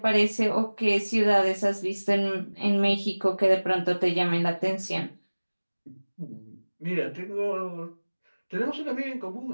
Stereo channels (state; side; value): inverted; both; correlation -1.00